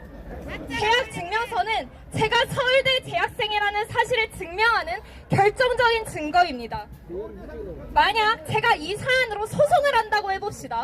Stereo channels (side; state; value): both; identical; correlation 1.00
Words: 재학 증명서는 제가 서울대 재학생이라는 사실을 증명하는 결정적인 증거입니다. 만약 제가 이 사안으로 소송을 한다고